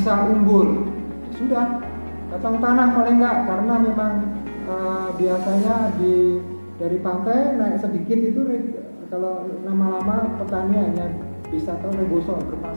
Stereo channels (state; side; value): inverted; both; correlation -1.00